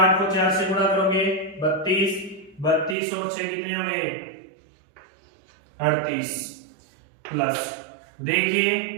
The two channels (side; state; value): left; drops out; at 3.0 s